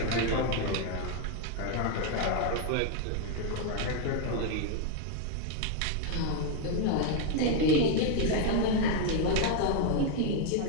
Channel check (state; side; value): different; both; correlation 0.00